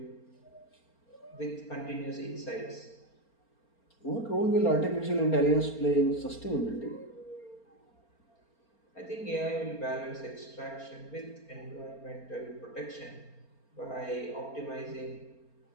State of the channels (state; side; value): late; right; 4.3 ms